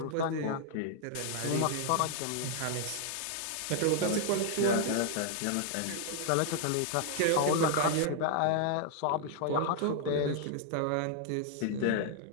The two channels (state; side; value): different; both; correlation 0.00